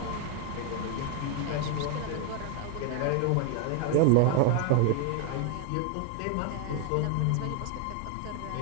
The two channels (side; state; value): both; different; correlation 0.01